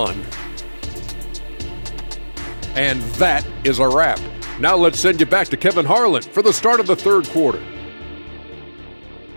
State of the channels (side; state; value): both; inverted; correlation -1.00